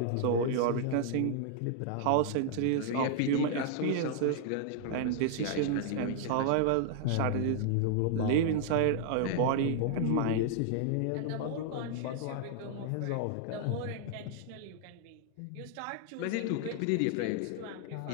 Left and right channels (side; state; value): both; different; correlation 0.00